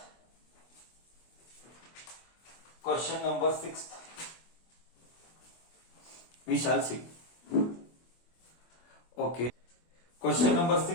Question number 6th. We shall see. Okay. Question number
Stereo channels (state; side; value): late; right; 24 ms